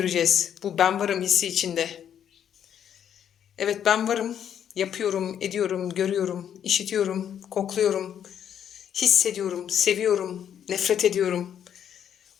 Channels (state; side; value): quieter; right; 9.2 dB